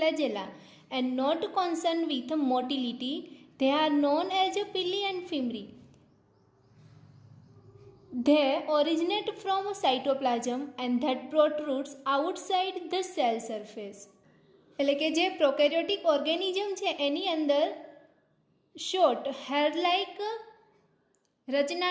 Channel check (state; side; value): identical; both; correlation 1.00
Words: and not concerned with motility. They are known as pili and fimbriae. They originate from cytoplasm and that protrudes outside the cell surface. એટલે કે જે prokaryotic organism છે એની અંદર short hair like રચના